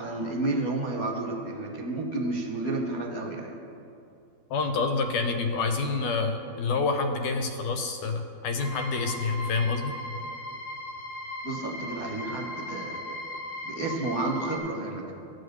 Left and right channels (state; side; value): late; right; 12 ms